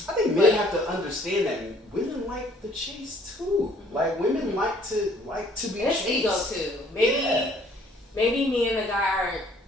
I think men have to understand that women like the chase too. Like women like to be it's chased. ego too. Maybe me and the guy aren't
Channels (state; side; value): normal; both; correlation 0.59